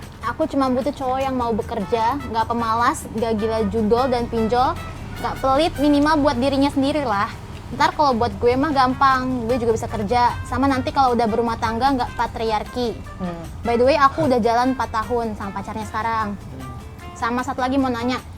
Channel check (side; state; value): both; identical; correlation 1.00